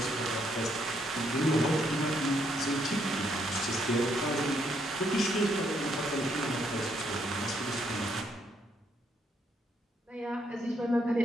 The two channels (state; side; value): normal; both; correlation 0.73